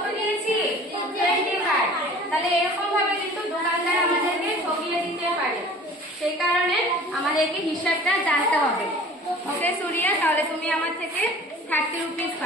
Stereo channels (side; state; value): both; normal; correlation 0.46